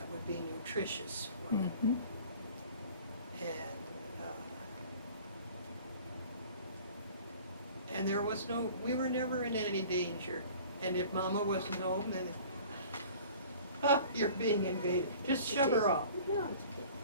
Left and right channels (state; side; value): inverted; both; correlation -0.46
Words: would be nutritious for them. Mhm. And there was we were never in any danger. And if Mama wasn't home, then, you're being invaded. Just shove her off. No, it's okay.